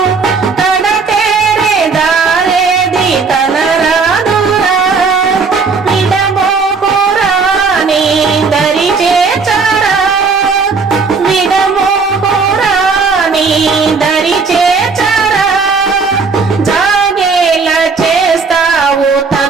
కడతేరే దారేది కనరాదురా విడబోకురా నీ దరి చేర్చరా విడబోకురా నీ దరి చేర్చరా జాగేలా చేస్తావు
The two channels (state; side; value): quieter; left; 4.8 dB